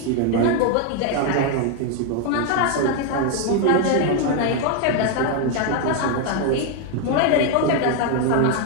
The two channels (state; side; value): different; both; correlation 0.00